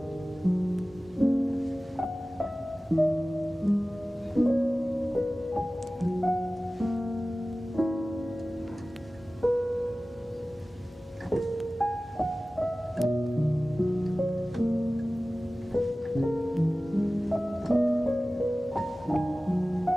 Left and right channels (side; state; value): both; normal; correlation 0.97